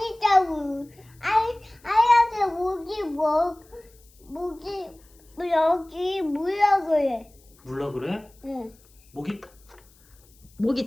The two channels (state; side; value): noise; left; hiss, 29 dB below the sound